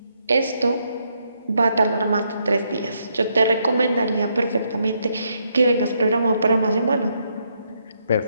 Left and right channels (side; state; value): both; inverted; correlation -0.77